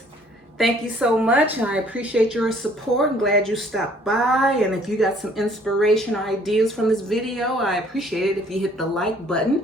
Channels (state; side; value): normal; both; correlation 0.59